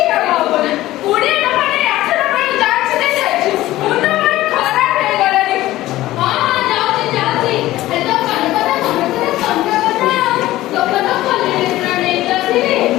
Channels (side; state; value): right; quieter; 16.0 dB